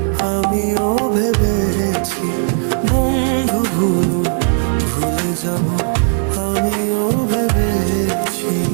আমিও ভেবেছি, বন্ধু ভুলো, ভুলে যাব আমিও ভেবেছি।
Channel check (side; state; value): left; silent; digital silence